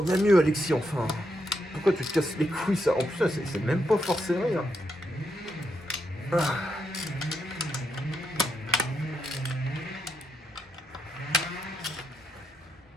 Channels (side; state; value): both; normal; correlation 0.81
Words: mieux Alexis enfin. Pourquoi tu te casses les couilles ça? En plus c'est même pas forcé rien.